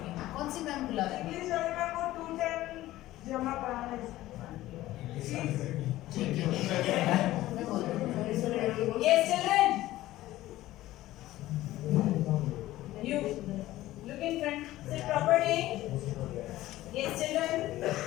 कौन सी मैम बुला रही है? इंग्लिश वाली मैम को 210 जमा कराना है। ठीक है मैं बोल दूंगी। Yes children, you look in front, sit properly. Yes children,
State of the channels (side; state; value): right; quieter; 15.8 dB